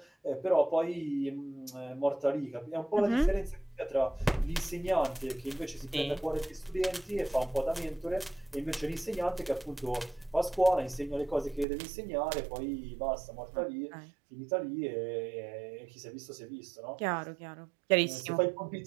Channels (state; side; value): drops out; left; at 11.7 s